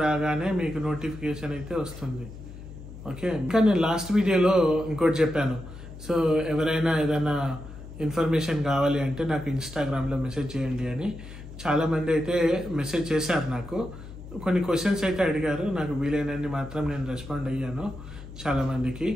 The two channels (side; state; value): left; noise; hum, 14 dB below the sound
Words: రాగానే మీకు నోటిఫికేషన్ అయితే వస్తుంది. ఓకే, ఇంకా నేను లాస్ట్ వీడియోలో ఇంకోటి చెప్పాను. సో ఎవరైనా ఏదైనా ఇన్ఫర్మేషన్ కావాలి అంటే నాకు ఇన్స్టాగ్రామ్లో మెసేజ్ చేయండి అని. చాలామంది అయితే మెసేజ్ చేశారు నాకు, కొన్ని క్వశ్చన్స్ అయితే అడిగారు. నాకు వీలైనన్ని మాత్రం నేను రెస్పాండ్ అయ్యాను చాలామందికి.